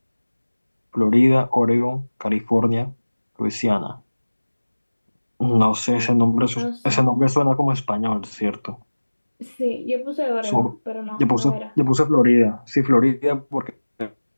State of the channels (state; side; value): inverted; both; correlation -1.00